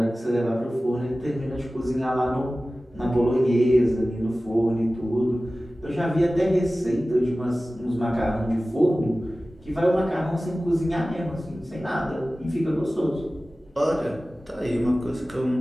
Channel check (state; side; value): normal; both; correlation 0.96